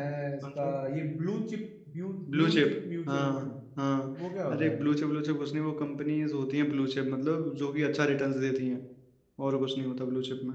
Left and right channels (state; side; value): identical; both; correlation 1.00